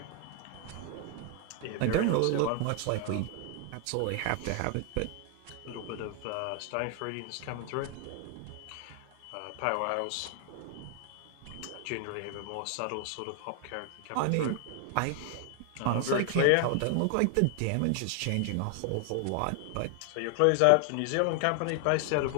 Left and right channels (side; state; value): both; different; correlation 0.00